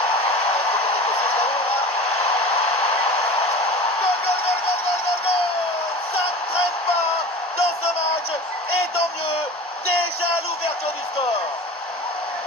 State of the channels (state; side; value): normal; both; correlation 0.35